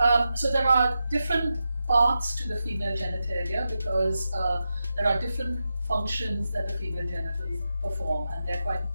so there are different parts to the female genitalia because there are different functions that the female genitals perform, and they're quite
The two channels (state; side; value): inverted; both; correlation -0.89